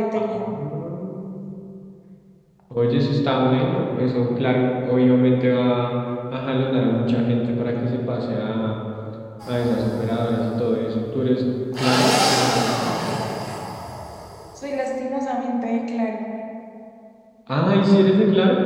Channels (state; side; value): identical; both; correlation 1.00